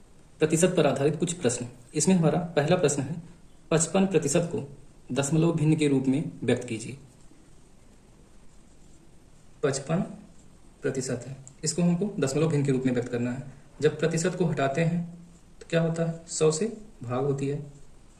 प्रतिशत पर आधारित कुछ प्रश्न। इसमें हमारा पहला प्रश्न है 55% को दशमलव भिन्न के रूप में व्यक्त कीजिए। 55% है, इसको हमको दशमलव भिन्न के रूप में व्यक्त करना है। जब प्रतिशत को हटाते हैं तो क्या होता है, 100 से भाग होती है,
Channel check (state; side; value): identical; both; correlation 1.00